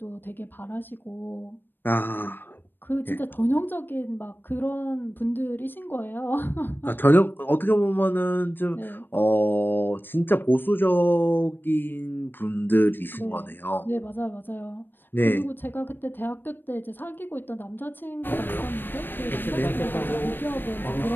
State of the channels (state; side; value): late; right; 0.095 ms